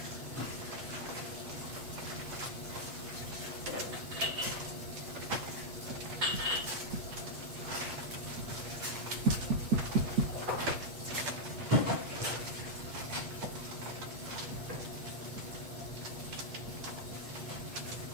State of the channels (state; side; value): late; left; 8.6 ms